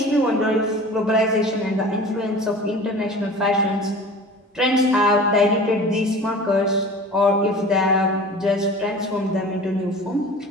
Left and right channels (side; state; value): both; normal; correlation 0.40